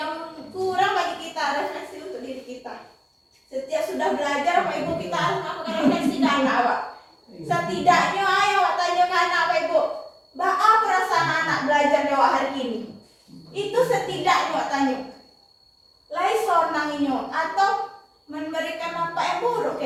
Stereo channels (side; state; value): both; identical; correlation 1.00